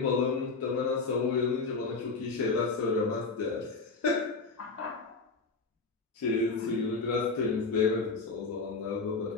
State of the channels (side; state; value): right; quieter; 4.1 dB